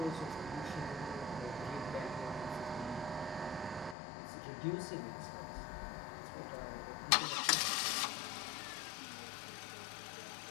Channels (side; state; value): right; drops out; at 4.0 s